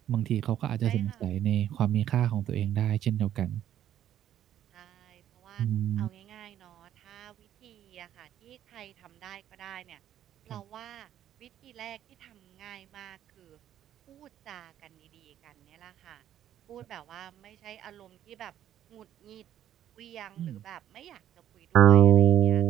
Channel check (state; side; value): quieter; left; 11.2 dB